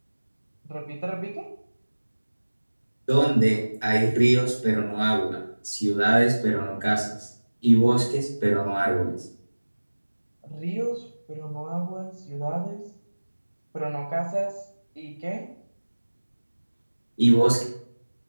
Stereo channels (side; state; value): both; inverted; correlation -1.00